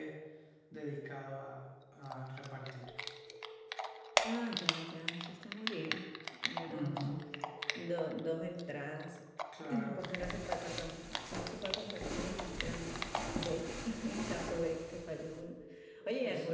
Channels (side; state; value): both; identical; correlation 1.00